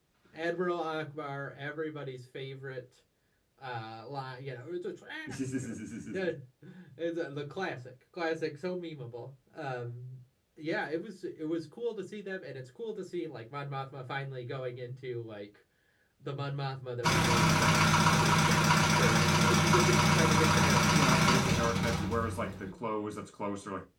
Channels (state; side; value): identical; both; correlation 1.00